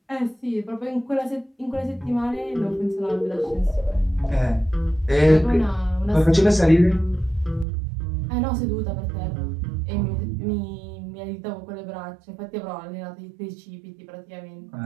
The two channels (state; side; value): drops out; left; at 7.7 s